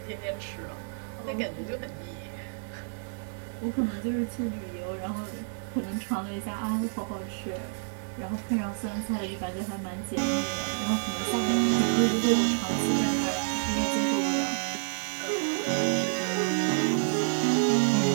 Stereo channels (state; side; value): silent; left; digital silence